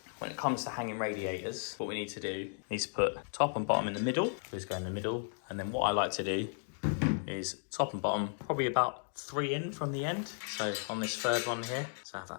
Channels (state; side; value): silent; right; 55 dB below the other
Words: when it comes to hanging radiators, what we need to do is put top and bottom in the middle. Just go in the middle. And then what I like to do is top and bottom, probably about 3 in from the end. So on this third one here, so I have